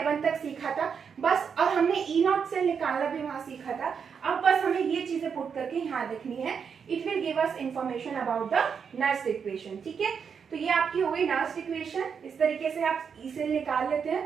तक सीखा था बस, और हमने ई नॉट सेल निकालना भी वहां सीखा था। अब बस बस हमें ये चीजें पुट करके यहाँ लिखनी है. It will give us information about the Nernst equation. ठीक है, तो ये आपकी हो गई नर्स्ट इक्वेशन. इस तरीके से आप ई सेल निकाल लेते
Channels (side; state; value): left; quieter; 6.6 dB